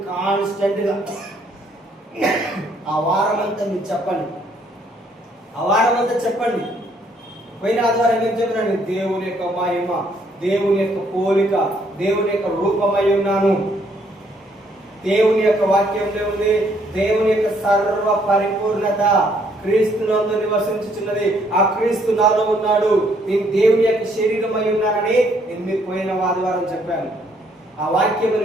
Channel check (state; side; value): normal; both; correlation 0.68